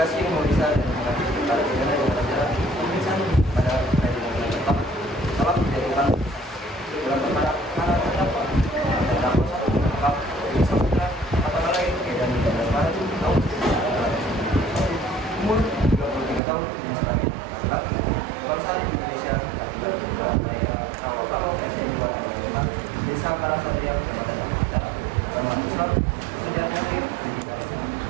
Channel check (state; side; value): drops out; left; at 16.4 s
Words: yang memeriksa dan mengambil perkara pidana dengan cara pemeriksaan pada peradilan tetap telah menjatuhkan dalam perkara terdakwa satu menangkap Dewi Samudra apakah lain dan 13 Maret tahun 2000, umur 33 tahun dan sebagai laki-laki kebangsaan Indonesia, akibat daya Rawakalo RT 2 Desa Karangsatriya, Kecamatan Dampita, Kecamatan Islam, Kerjaan Aktif,